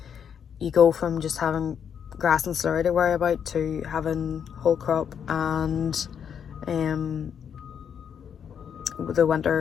You go from just having grass and slurry to worry about to having whole crop and the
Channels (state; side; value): quieter; right; 7.9 dB